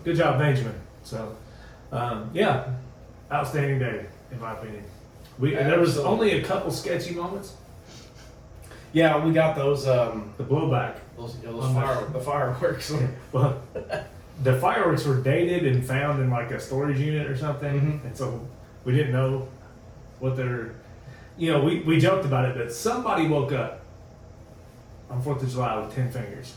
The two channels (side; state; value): both; identical; correlation 1.00